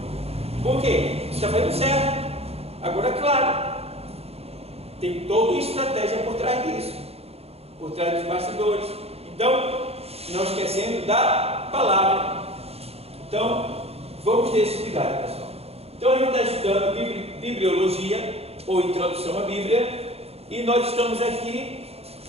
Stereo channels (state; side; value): late; left; 0.29 ms